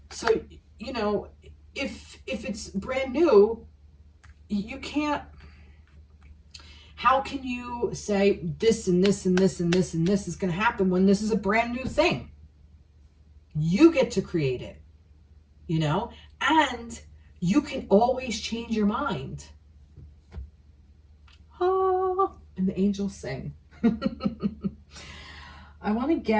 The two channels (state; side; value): identical; both; correlation 1.00